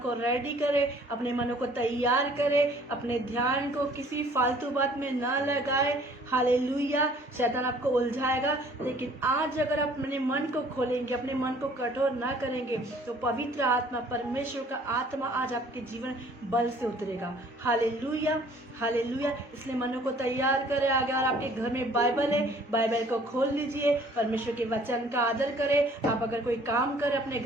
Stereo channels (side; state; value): both; normal; correlation 0.56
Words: रेडी करें, अपने मनों को तैयार करें, अपने ध्यान को किसी फालतू बात में ना लगाए। हालेलुया। शैतान आपको उलझाएगा, लेकिन आज अगर आप अपने मन को खोलेंगे, अपने मन को कठोर ना करेंगे, तो पवित्र आत्मा, परमेश्वर का आत्मा आज आपके जीवन बल से उतरेगा। Hallelujah, hallelujah. इसलिए मनों को तैयार करें। अगर आपके घर में बाइबल है, बाइबल को खोल लीजिए, परमेश्वर के वचन का आदर करें। आप अगर कोई काम करें, अपने